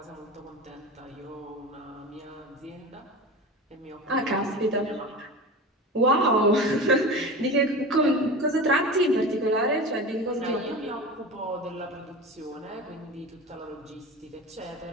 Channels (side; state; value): both; normal; correlation 0.30